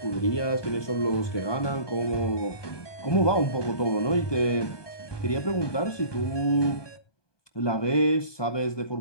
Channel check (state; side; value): late; right; 1.2 ms